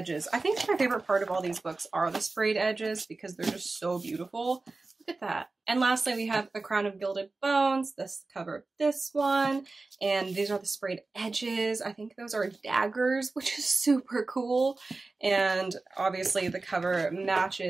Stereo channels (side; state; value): left; quieter; 3.5 dB